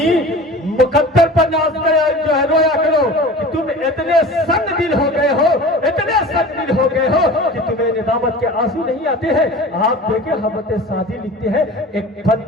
مقدر پر ناز کرے جو ہے رویا کرو کہ تم اتنے سنگ دل ہو گئے ہو, اتنے سنگ دل ہو گئے ہو کہ تمہیں ندامت کے آنسو نہیں آتے ہیں. آپ دیکھیں حضرت سعدی لکھتے ہیں ایک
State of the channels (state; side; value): normal; both; correlation 0.38